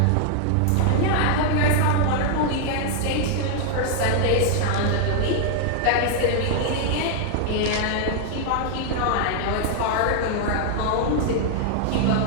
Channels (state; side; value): different; both; correlation 0.00